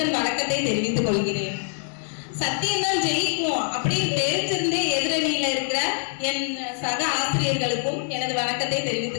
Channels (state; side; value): silent; right; 61 dB below the other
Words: வணக்கத்தை தெரிவித்துக் கொள்கிறேன். சத்தியம்தான் ஜெயிக்கும் அப்படின்னு தெரிஞ்சிருந்தே எதிரணியில இருக்கிற என் சக ஆசிரியர்களுக்கும் எனது வணக்கத்தை